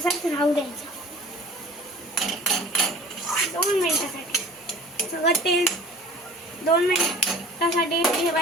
राहू द्यायचं. 2 मिनिटासाठी सगळं तेल 2 मिनिटासाठी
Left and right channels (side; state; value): both; normal; correlation 0.45